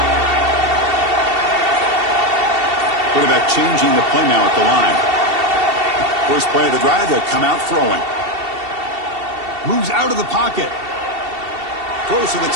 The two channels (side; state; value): left; late; 2.7 ms